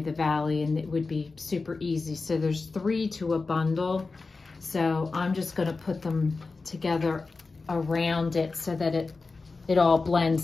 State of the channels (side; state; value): right; quieter; 4.0 dB